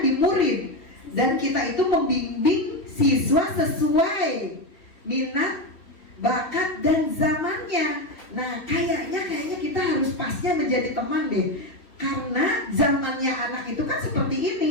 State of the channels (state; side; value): late; right; 3.2 ms